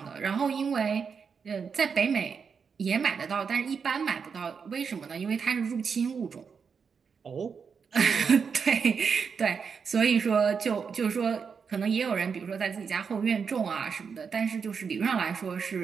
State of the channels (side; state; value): left; quieter; 6.0 dB